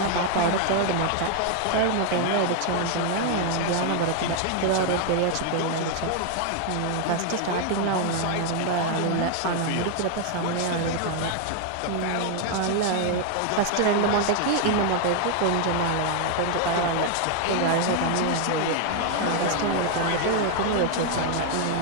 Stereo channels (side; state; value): both; different; correlation 0.00